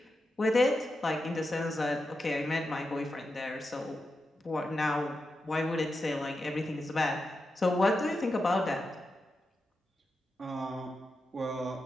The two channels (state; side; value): normal; both; correlation 0.89